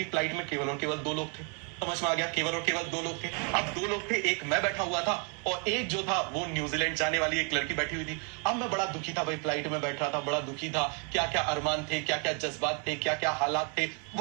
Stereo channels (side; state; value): left; quieter; 37.2 dB